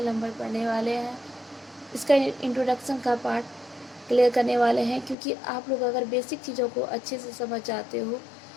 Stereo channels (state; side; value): drops out; right; at 5.2 s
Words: नंबर पढ़ने वाले हैं। इसका इंट्रोडक्शन का पार्ट क्लियर करने वाले हैं, क्योंकि आप लोग अगर बेसिक चीज़ों को अच्छे से समझ जाते हो